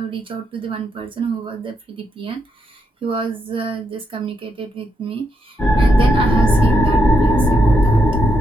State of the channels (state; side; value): normal; both; correlation 0.81